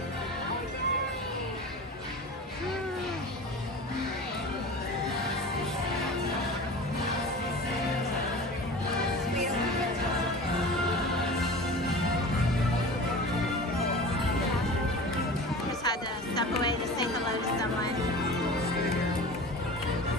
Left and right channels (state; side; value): normal; both; correlation 0.36